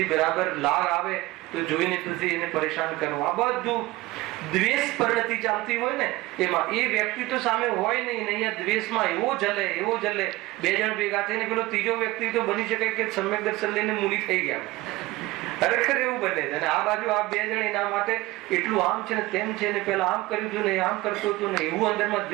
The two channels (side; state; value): left; quieter; 19.6 dB